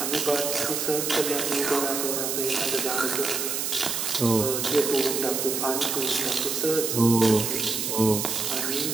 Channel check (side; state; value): right; noise; hiss, 1 dB below the sound